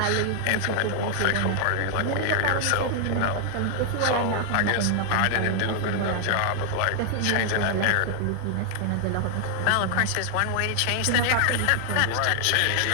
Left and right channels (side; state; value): both; different; correlation 0.00